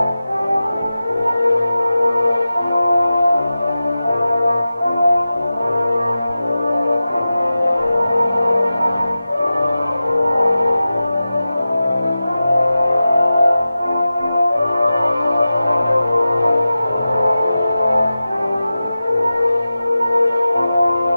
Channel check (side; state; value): both; inverted; correlation -0.94